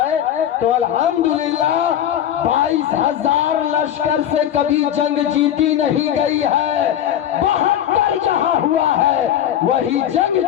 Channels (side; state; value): right; quieter; 10.6 dB